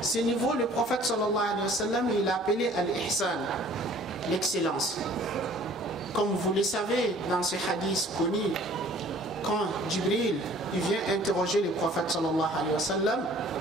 Ce niveau, le prophète sallallahu alayhi wa sallam, il a appelé al-ihsan, l'excellence. Comme vous le savez, dans ce hadith connu, quand Jibril il vient interroger le prophète sallallahu alayhi wa sallam,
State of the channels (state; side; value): normal; both; correlation 0.52